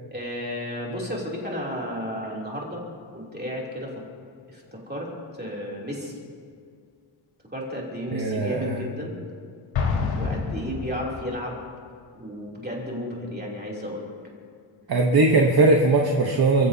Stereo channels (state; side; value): normal; both; correlation 0.12